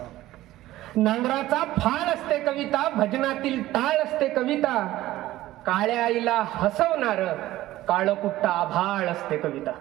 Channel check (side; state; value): left; quieter; 15.7 dB